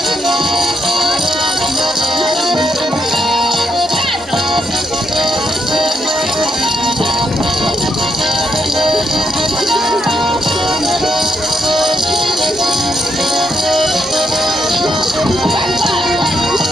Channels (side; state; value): both; normal; correlation 0.78